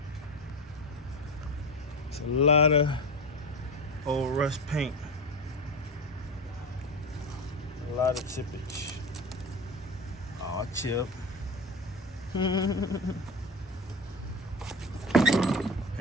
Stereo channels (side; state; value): both; normal; correlation 0.25